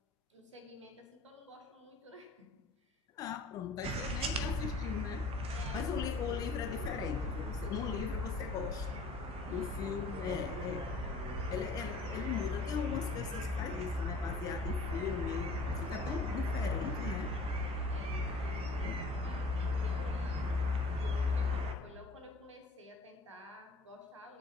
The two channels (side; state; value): right; quieter; 3.1 dB